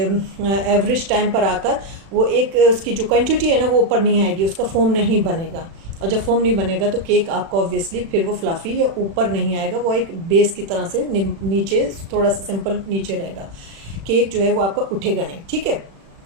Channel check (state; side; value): late; left; 36 ms